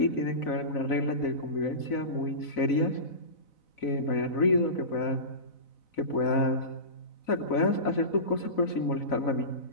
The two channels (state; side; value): late; right; 4.0 ms